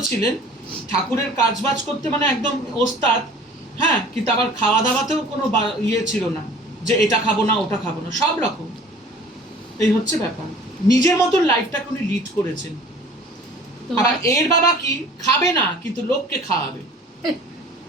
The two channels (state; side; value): normal; both; correlation 0.47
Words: ছিলেন, ঠাকুরের কাজবাজ করতে মানে একদম ওস্তাদ। হ্যাঁ, কিন্তু আবার খাওয়া দাওয়াতেও কোনো ইয়ে ছিল না যে এটা খাবো না ওটা খাবো না, সব রকম। এই হচ্ছে ব্যাপার। নিজের মতন লাইফটাকে উনি লিড করেছেন। আবার এর বাবা কি খাবে না, কিন্তু লোককে খাওয়াবে,